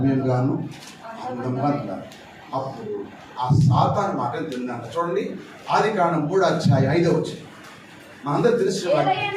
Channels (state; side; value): identical; both; correlation 1.00